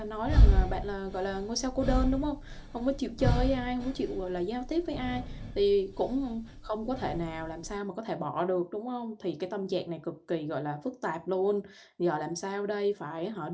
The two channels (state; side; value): identical; both; correlation 1.00